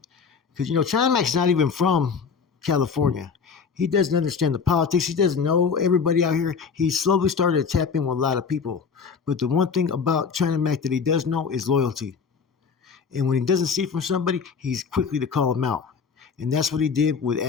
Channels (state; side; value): quieter; right; 5.8 dB